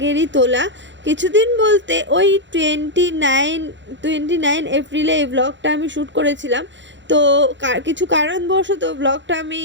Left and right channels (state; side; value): late; left; 0.53 ms